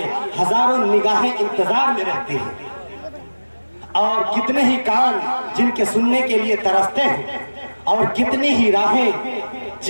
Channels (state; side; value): inverted; both; correlation -1.00